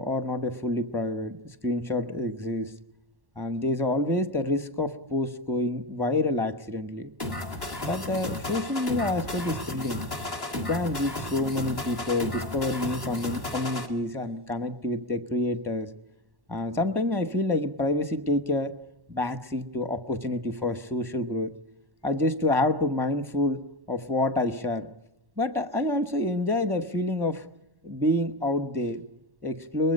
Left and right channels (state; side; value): late; left; 1.1 ms